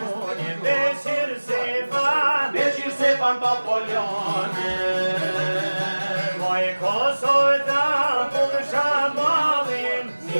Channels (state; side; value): inverted; both; correlation -1.00